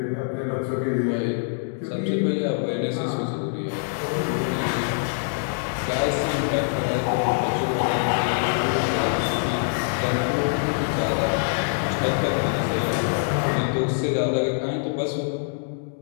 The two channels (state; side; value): silent; right; digital silence